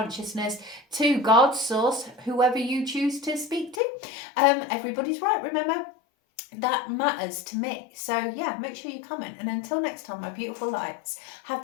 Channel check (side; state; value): right; drops out; at 3.8 s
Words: to God, source, whoever you choose to speak to. Everybody's right, remember? That matters to me. So yeah, make sure you comment. And until next time, my beautiful lights, have